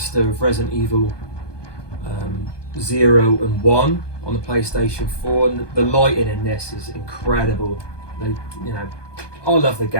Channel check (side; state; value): right; late; 1.2 ms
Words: of Resident Evil 0 and 1 on the PlayStation 4, and the lighting in this is incredible. I love the